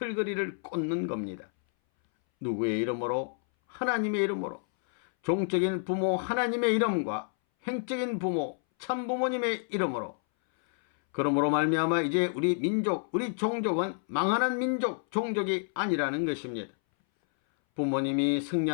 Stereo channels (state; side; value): silent; right; 58 dB below the other